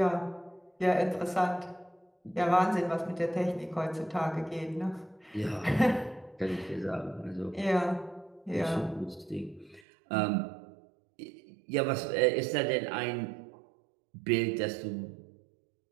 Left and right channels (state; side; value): drops out; left; at 9.8 s